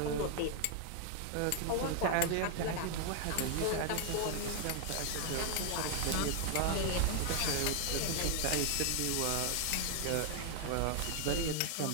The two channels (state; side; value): different; both; correlation 0.00